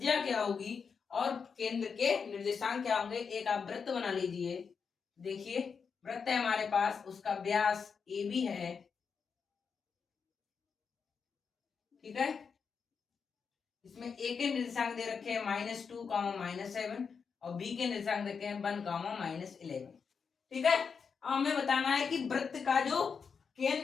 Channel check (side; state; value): right; quieter; 5.9 dB